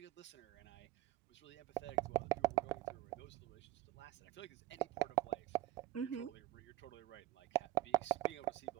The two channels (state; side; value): quieter; left; 16.1 dB